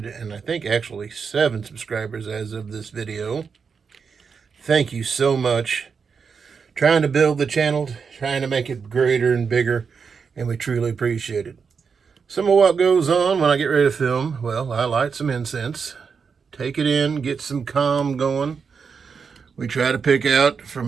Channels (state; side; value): quieter; left; 5.8 dB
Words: and I think actually 7 subscribers as of this video, thank you so much. Trying to build the channel, trying to make it greater and bigger, and we truly appreciate it. Some of what goes on when I get ready to film, well, I light some incense, take it in, get some calm going. We try to pick out